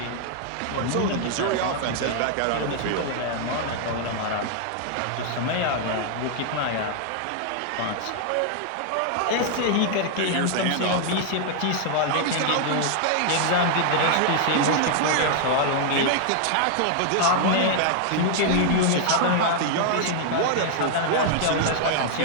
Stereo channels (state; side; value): different; both; correlation 0.00